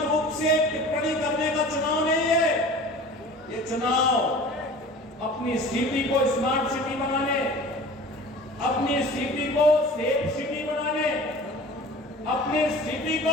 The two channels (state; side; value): normal; both; correlation 0.41